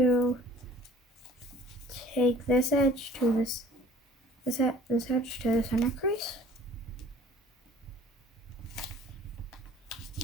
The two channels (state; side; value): normal; both; correlation 0.51